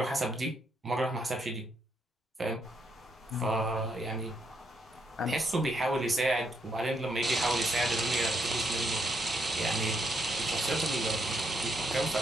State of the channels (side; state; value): both; normal; correlation 0.76